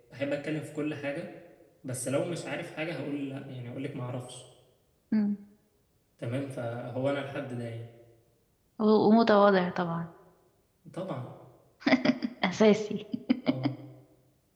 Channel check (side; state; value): both; identical; correlation 1.00